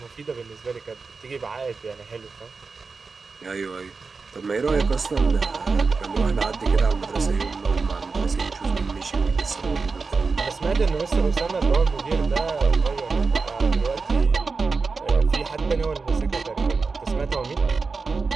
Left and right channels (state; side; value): quieter; left; 4.5 dB